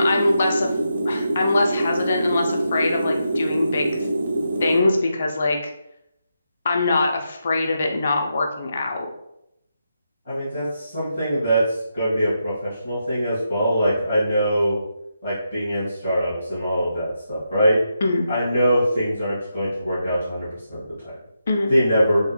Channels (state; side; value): inverted; both; correlation -0.85